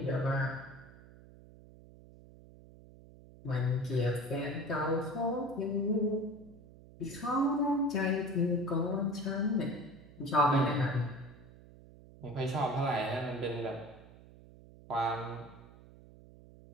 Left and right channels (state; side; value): noise; right; hum, 21 dB below the sound